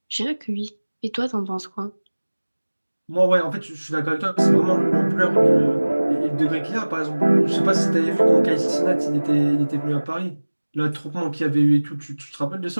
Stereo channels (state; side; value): inverted; both; correlation -1.00